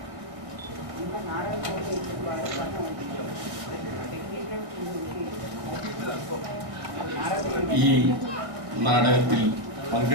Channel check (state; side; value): late; left; 1.7 ms